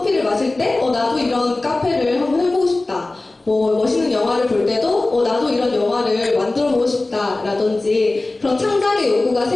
마실 때, 나도 이런 카페를 한번 해보고 싶다. 멋있는 영화를 볼 때도 나도 이런 영화를 만들어보고 싶다 라든지 그런 창작의 욕구가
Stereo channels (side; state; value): right; quieter; 3.0 dB